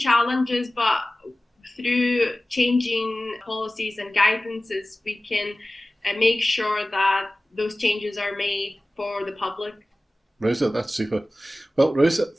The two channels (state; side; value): normal; both; correlation 0.97